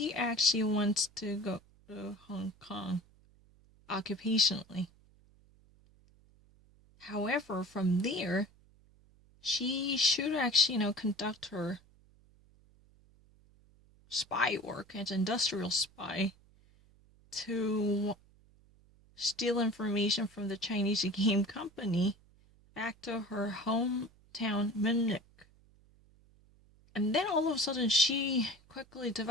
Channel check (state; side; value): noise; right; hum, 29 dB below the sound